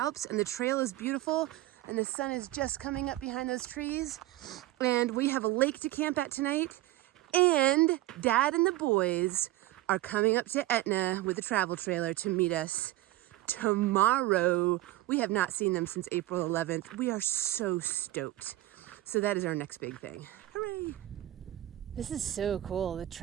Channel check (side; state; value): left; quieter; 16.0 dB